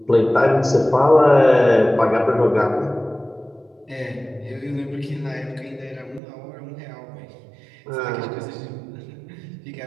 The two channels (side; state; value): left; drops out; at 6.2 s